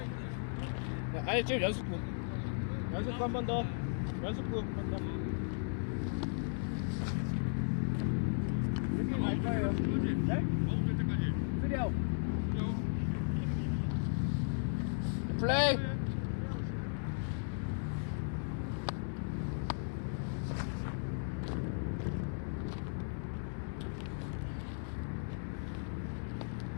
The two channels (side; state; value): right; silent; digital silence